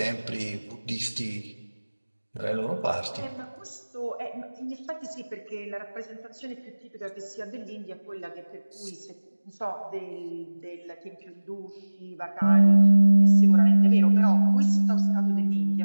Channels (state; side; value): inverted; both; correlation -1.00